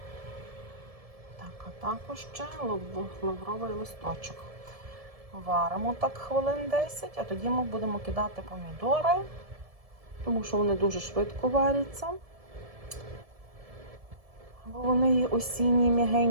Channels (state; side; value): late; left; 1.7 ms